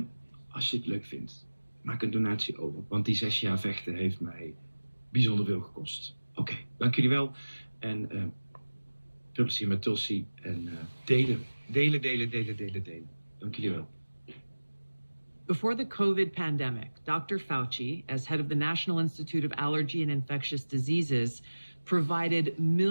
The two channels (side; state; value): both; inverted; correlation -1.00